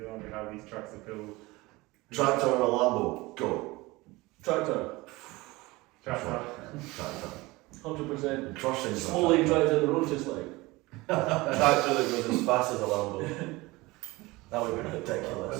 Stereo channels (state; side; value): quieter; left; 21.7 dB